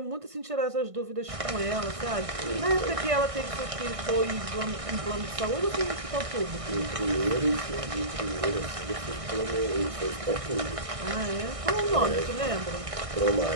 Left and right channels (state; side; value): late; left; 1.6 ms